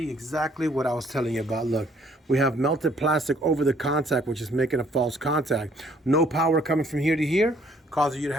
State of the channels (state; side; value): normal; both; correlation 0.62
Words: exactly what I was telling you about. Look, we have melted plastic over the contact, which is making a false contact. No power coming from here to here, causing you to